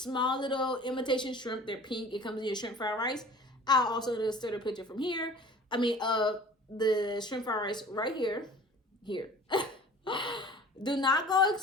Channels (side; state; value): both; normal; correlation 0.45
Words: little imitation shrimp. They're pink. It comes in your shrimp fried rice. I'll also insert a picture from here. The shrimp fried rice right here. Do not go